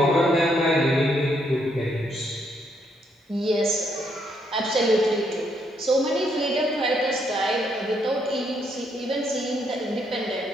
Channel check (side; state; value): both; normal; correlation 0.74